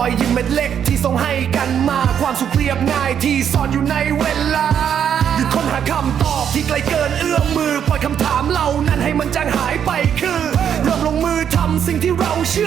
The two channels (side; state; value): left; quieter; 8.6 dB